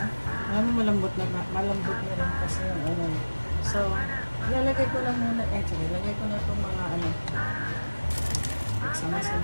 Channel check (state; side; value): inverted; both; correlation -1.00